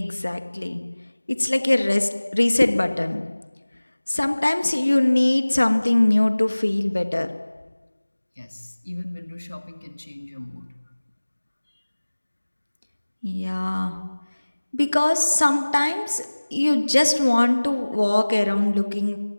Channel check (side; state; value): both; inverted; correlation -1.00